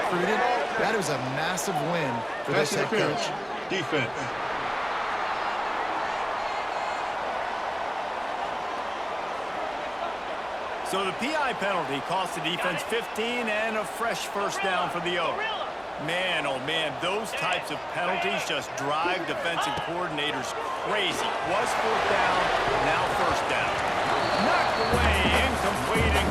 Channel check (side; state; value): both; identical; correlation 1.00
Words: recruited, that is a massive win for this head coach. Defense. So the PI penalty cost the defense 15 and a fresh first down for the Oaks. Man, oh man, those types of penalties just drive defensive coordinators crazy. Was fourth down, now first down. Knocked away, incomplete, and